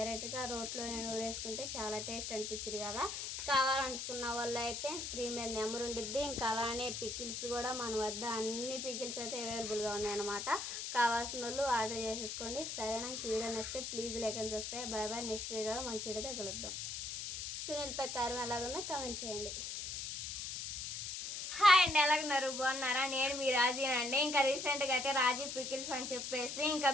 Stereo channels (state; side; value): noise; left; hiss, 5 dB below the sound